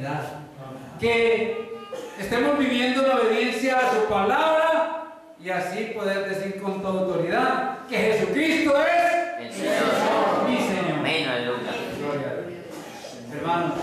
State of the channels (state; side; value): identical; both; correlation 1.00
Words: Que estemos viviendo en obediencia a su palabra y así poder decir con toda autoridad que Jesucristo es El Señor. mi Señor. Amén, aleluya. Gloria a Dios. Hermanos,